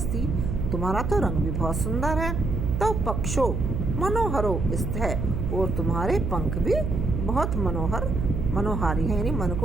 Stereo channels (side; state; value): right; noise; hum, 2 dB below the sound